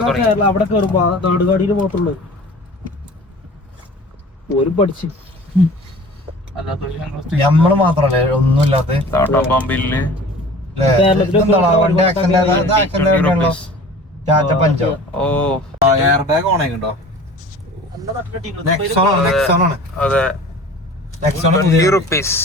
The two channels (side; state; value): both; normal; correlation 0.43